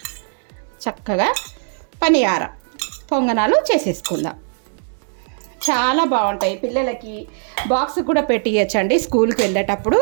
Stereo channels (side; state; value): left; silent; digital silence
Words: చక్కగా పనియారం పొంగనాలు చేసేసుకుందాం. చాలా బాగుంటాయి. పిల్లలకి బాక్స్ కూడా పెట్టియచ్చండి. స్కూల్కి వెళ్ళేటప్పుడు